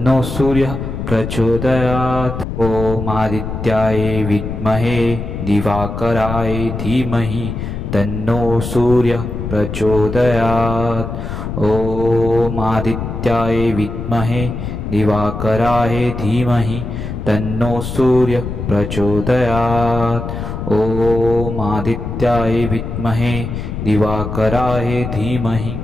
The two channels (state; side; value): noise; left; rumble, 6 dB below the sound